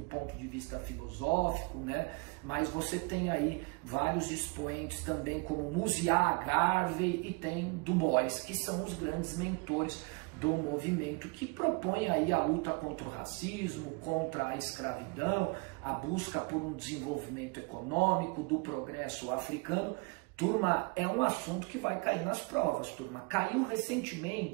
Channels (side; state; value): left; quieter; 28.7 dB